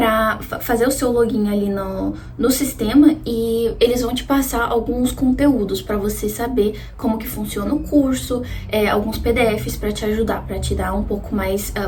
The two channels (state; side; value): identical; both; correlation 1.00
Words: fazer o seu login ali no sistema e eles vão te passar alguns conteúdos para você saber como que funciona o curso, alguns PDFs para te ajudar, para te dar um pouco mais,